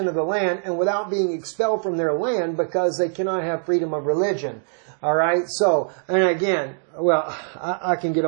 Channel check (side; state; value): left; silent; digital silence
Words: of the land, and without being expelled from their land because they cannot have freedom of religion. All right. So, and again, well, I can get